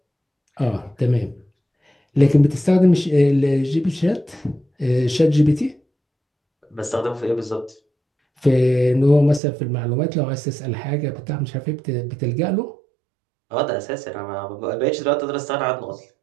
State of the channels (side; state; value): left; drops out; at 9.4 s